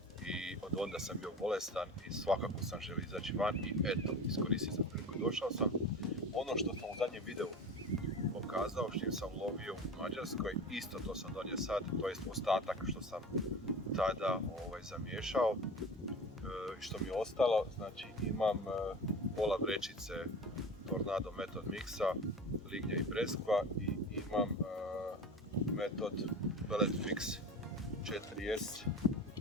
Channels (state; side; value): normal; both; correlation 0.33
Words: i od onda sam bio bolestan i svakako sam želio izaći van i eto, iskoristio sam priliku i došao sam. Ono što sam u zadnjem videu pokazao, što sam lovio u Mađarskoj, isto to sam donio sad, to je ostatak što sam tada zamiješao i što mi je ostalo, znači imam pola vrećice Tornado Method Mixa, lignja i breskva i imam Method Pellet Fix 4S